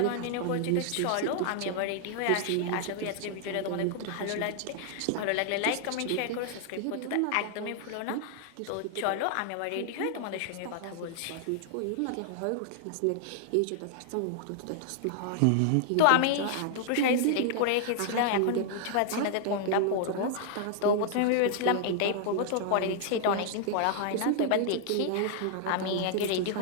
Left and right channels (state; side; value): different; both; correlation 0.00